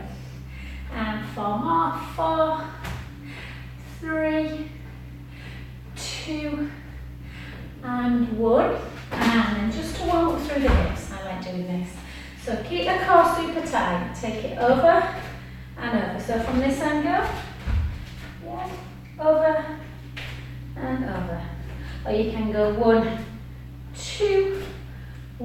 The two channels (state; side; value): identical; both; correlation 1.00